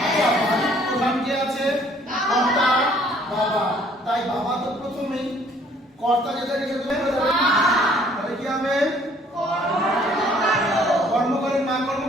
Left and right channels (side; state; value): both; normal; correlation 0.59